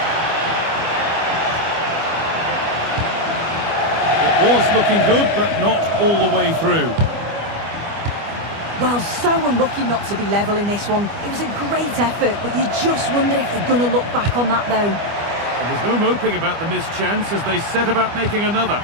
It was looking good, but not all the way through. Well, so unlucky not to be level in this one. It was a great effort, but you just wonder if they're going to look back on that, though. There was no moping about the missed chance as they set about making another.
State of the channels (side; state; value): left; late; 25 ms